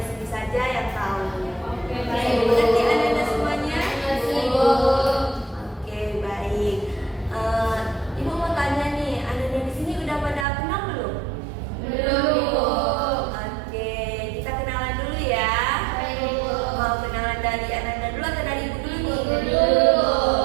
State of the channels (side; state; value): left; drops out; at 10.5 s